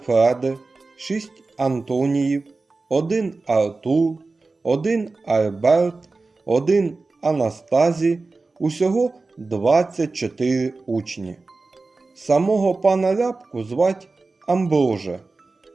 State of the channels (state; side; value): quieter; left; 3.7 dB